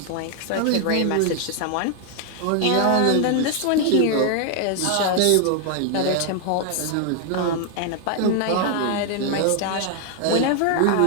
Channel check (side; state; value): both; different; correlation 0.00